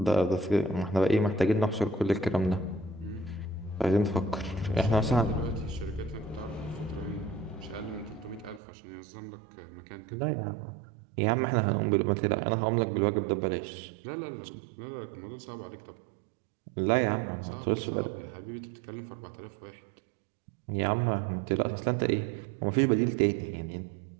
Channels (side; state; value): left; drops out; at 8.6 s